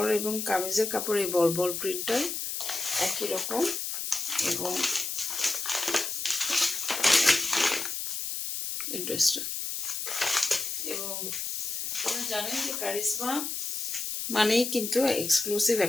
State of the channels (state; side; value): noise; left; hiss, 3 dB below the sound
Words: এবং কামিজের কাপড় এই বল বল প্রিন্টটাই একই রকম। এবং এই ড্রেসটা, এবং আপনারা জানেন যে কারিজমা মানেই কিন্তু এক্সক্লুসিভ